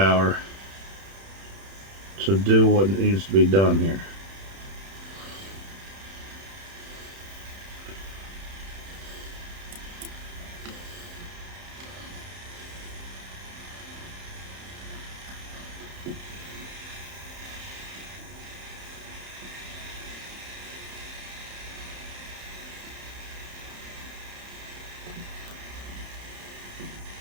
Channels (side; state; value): left; late; 31 ms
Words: to do what needs to be done here.